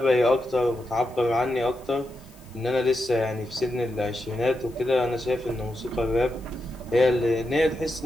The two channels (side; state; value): left; noise; hiss, 27 dB below the sound